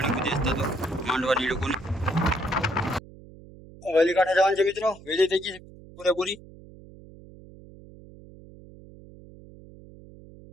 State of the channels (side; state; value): right; noise; hum, 20 dB below the sound